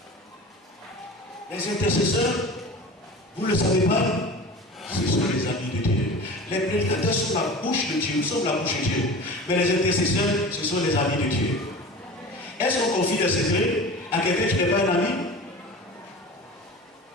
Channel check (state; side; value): normal; both; correlation 0.36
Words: Les intercesseurs, vous ne le savez pas, ce sont les amis de Dieu. Les prédicateurs sont la bouche de Dieu, nous sommes la bouche de Dieu. Mais les intercesseurs, ce sont les amis de Dieu. Est-ce qu'on confie des secrets à quelqu'un qui n'est pas un ami?